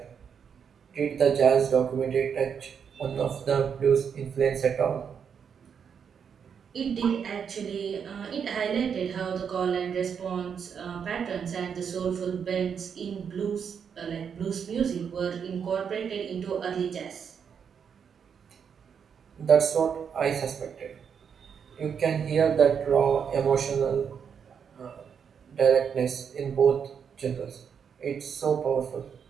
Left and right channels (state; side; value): quieter; left; 7.1 dB